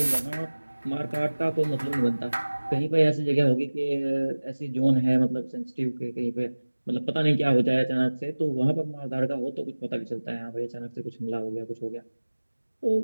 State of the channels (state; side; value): inverted; both; correlation -1.00